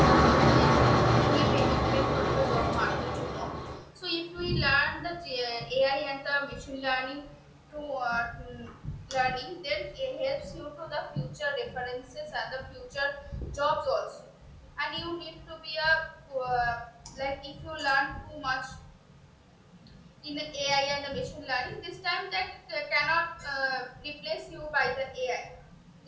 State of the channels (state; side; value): identical; both; correlation 1.00